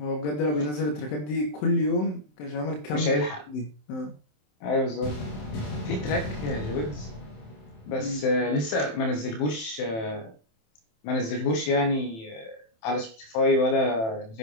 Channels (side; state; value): right; late; 27 ms